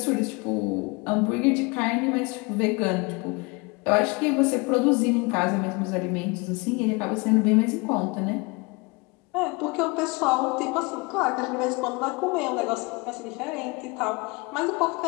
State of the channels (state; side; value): quieter; right; 27.6 dB